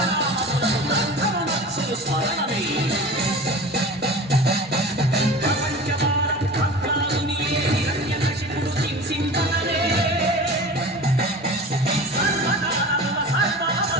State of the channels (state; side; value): normal; both; correlation 0.36